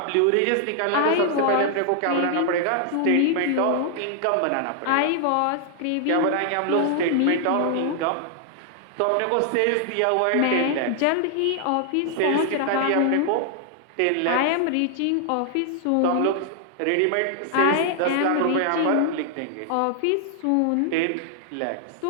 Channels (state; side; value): different; both; correlation 0.00